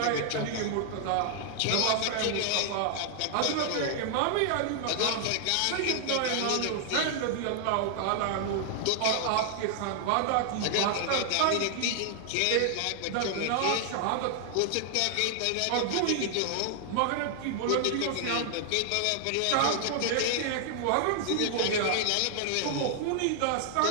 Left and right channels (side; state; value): both; different; correlation 0.00